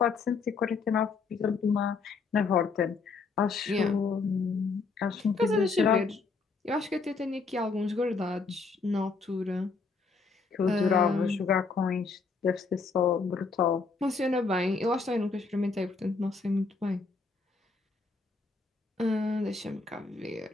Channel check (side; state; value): right; quieter; 4.5 dB